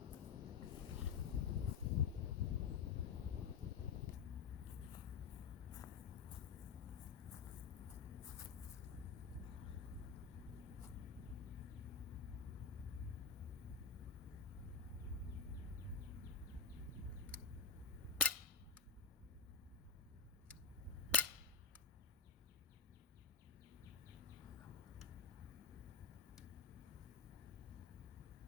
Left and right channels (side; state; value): right; quieter; 5.0 dB